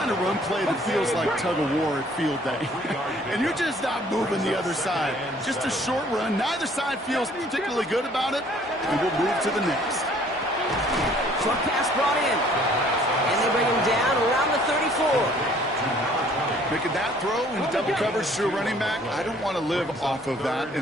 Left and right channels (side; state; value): both; normal; correlation 0.58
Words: of run play that feels like tug-of-war at field day. And you're just not moving the other side. Just a short run. Neither side feels particularly good about it. And we'll move to the next. Short pass brought in. And they bring him down around the 34. Making that throw in double coverage to a running back, I don't want to live off of that,